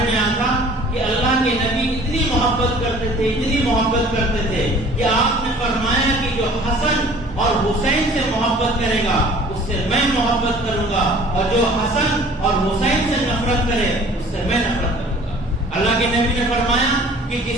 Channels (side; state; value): both; normal; correlation 0.50